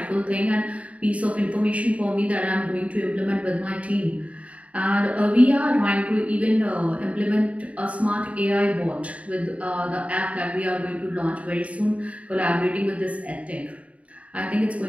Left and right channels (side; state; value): left; late; 0.066 ms